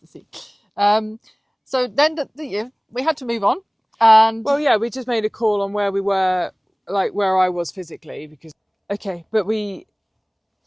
see. So then we had to move on, and we just made a call on where we were, like where I was physically, because it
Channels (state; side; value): identical; both; correlation 1.00